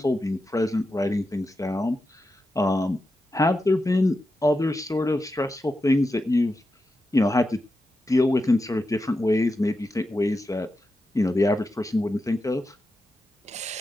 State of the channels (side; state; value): both; normal; correlation 0.89